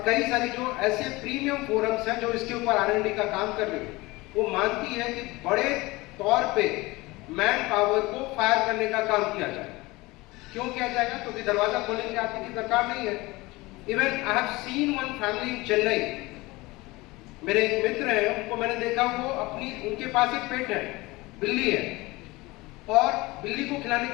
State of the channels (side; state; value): right; quieter; 21.7 dB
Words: कई सारी जो ऐसे प्रीमियम फोरम्स हैं जो इसके ऊपर R&D का काम कर रही है, वो मानती है कि बड़े तौर पे मैन पावर को फायर करने का काम किया जाए। क्यों किया जाएगा? क्योंकि दरवाजा खोलने के आदमी की दरकार नहीं है। Even I have seen one family in Chennai, मेरे एक मित्र हैं, उनको मैंने देखा, वो उनके पास एक पेट है, बिल्ली है, और बिल्ली को खिलाने